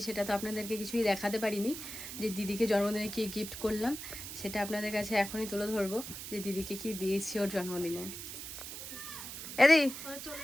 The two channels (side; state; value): right; noise; hiss, 9 dB below the sound